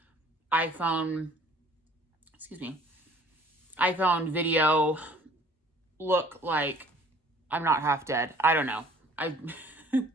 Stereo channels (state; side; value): normal; both; correlation 0.54